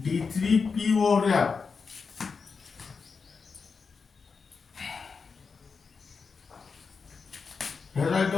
overlap. Here write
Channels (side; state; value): right; quieter; 5.1 dB